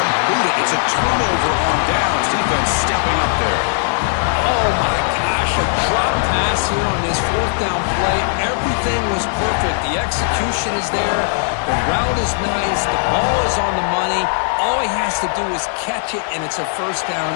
it. It's a turnover on downs. Defense stepping up there. Oh, my gosh. A drop pass here on this 4th down play. Everything was perfect. The execution is there. The route is nice. The ball is on the money. All he has to do is catch it, and it's a first down,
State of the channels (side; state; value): right; silent; 67 dB below the other